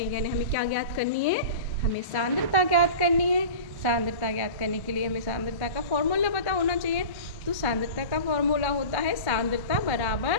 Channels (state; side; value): late; right; 1.1 ms